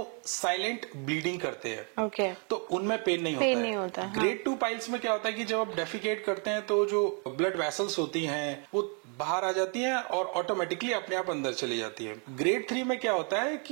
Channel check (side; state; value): left; quieter; 38.4 dB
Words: साइलेंट ब्लीडिंग करते हैं। ओके, तो उनमें पेन नहीं होता है। ग्रेड 2 पाइल्स में क्या होता है कि जब आप डेफिकेट करते हैं तो जो ब्लड वेसल्स होती हैं वो बाहर आ जाती हैं और ऑटोमेटिकली अपने आप अंदर चली जाती है। ग्रेड 3 में क्या होता है